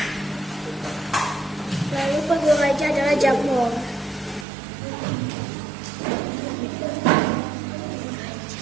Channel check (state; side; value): drops out; left; at 4.5 s